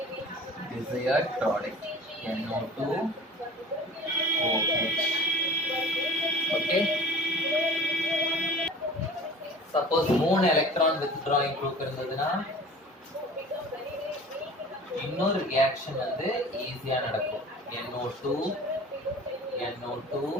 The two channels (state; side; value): normal; both; correlation 0.42